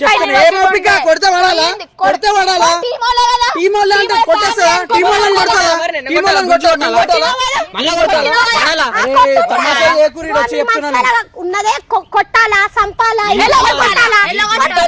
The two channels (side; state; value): both; identical; correlation 1.00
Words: చెప్తాను, లేదు. ఏం ఓపిక కొడితే పడాలా కొడితే పడాలా టీమ్ వాళ్ళే కదా. టీం వాళ్ళు అంటే కొట్టేస్తారా టీం వాళ్ళని కొడతారా టీం వాళ్ళని కొట్టాలా మళ్ళా కొట్టాలా? పడాలా? అరే తమాషా చేయకూరి వచ్చి చెప్తున్నాను ఉన్నదే కొట్టాలా, సంపాలా, ఎలా కొట్టాలా, కొట్టాలా? ఎలా